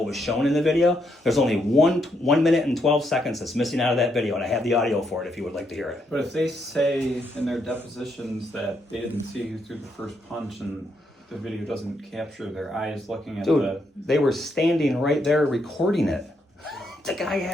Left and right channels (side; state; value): both; normal; correlation 0.77